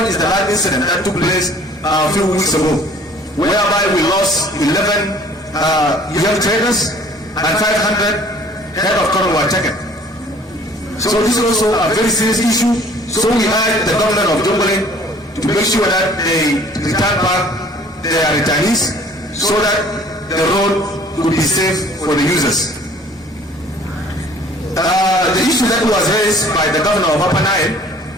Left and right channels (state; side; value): normal; both; correlation 0.53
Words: is the last incident that took place a few weeks ago, whereby we lost 11 young traders and 500 head of cattle were taken. So this is also a very serious issue. So we urge the government of Jonglei to make sure that they return back their returnees so that the road will be safe for the users. The issue that was raised by the governor of Upper Nile,